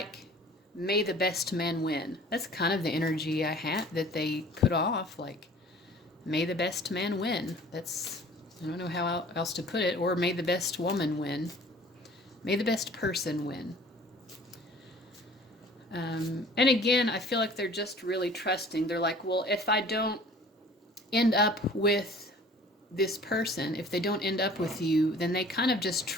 may the best man win. That's kind of the energy I had that they put off, like, may the best man win. That's, I don't know how else to put it. Or may the best woman win. May the best person win. And again, I feel like they're just really trusting. They're like, well, if I don't end up with this person, if they don't end up with you, then they kind of just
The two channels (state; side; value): normal; both; correlation 0.49